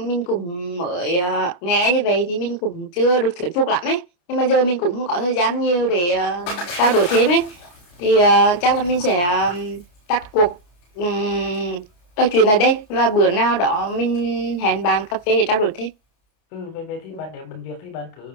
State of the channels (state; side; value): late; right; 29 ms